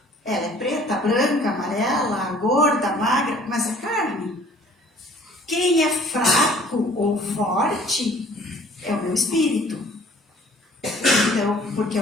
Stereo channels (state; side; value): normal; both; correlation 0.54